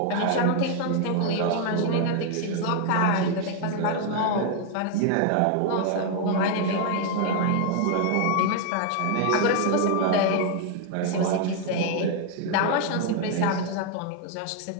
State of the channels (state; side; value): different; both; correlation 0.00